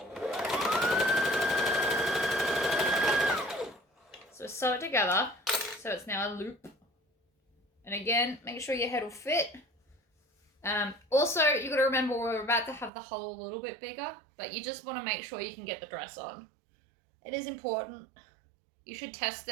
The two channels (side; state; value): left; drops out; at 12.9 s